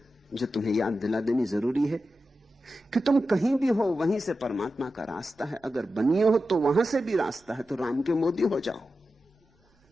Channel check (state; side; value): normal; both; correlation 0.91